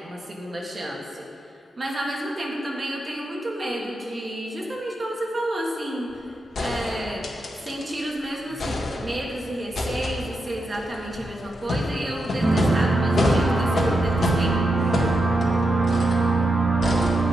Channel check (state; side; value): normal; both; correlation 0.85